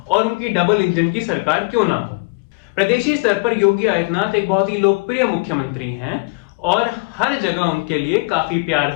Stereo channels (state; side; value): quieter; right; 29.0 dB